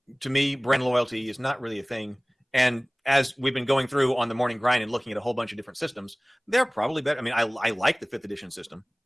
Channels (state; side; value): identical; both; correlation 1.00